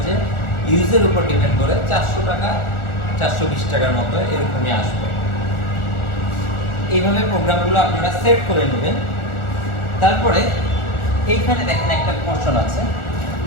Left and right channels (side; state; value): right; late; 1.4 ms